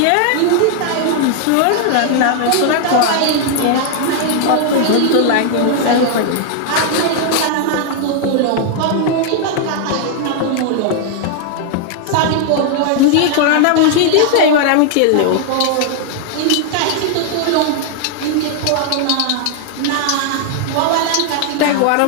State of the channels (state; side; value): different; both; correlation 0.00